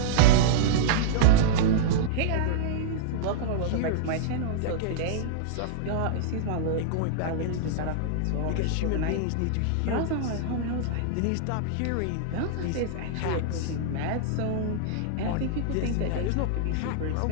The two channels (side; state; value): both; different; correlation -0.02